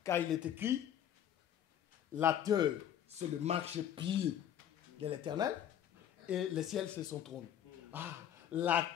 Car il est écrit, la terre, c'est le marchepied de l'Éternel, et le ciel, c'est son trône. Ah, la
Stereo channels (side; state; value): right; quieter; 10.1 dB